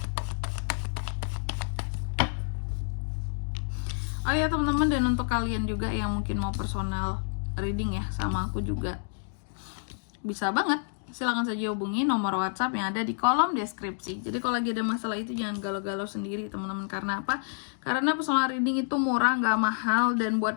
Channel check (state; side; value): silent; right; digital silence